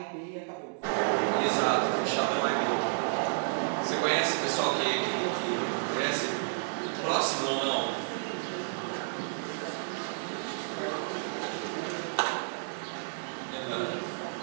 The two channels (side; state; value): left; silent; digital silence